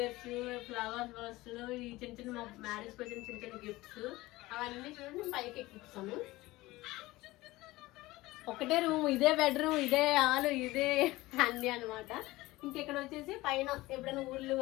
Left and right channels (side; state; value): right; quieter; 19.2 dB